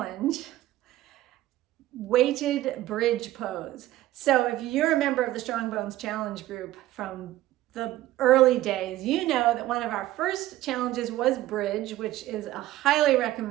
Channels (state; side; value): quieter; left; 15.3 dB